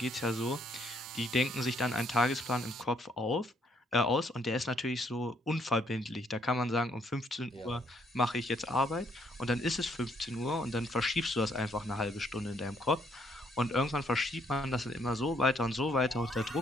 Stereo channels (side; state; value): both; normal; correlation 0.70